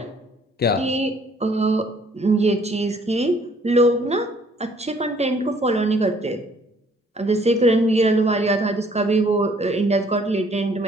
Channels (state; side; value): normal; both; correlation 0.61